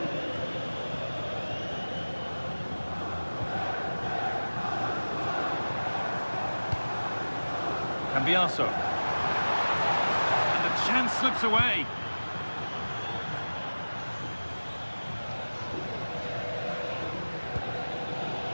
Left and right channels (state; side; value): inverted; both; correlation -1.00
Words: Cambiaso. And the chance slips away.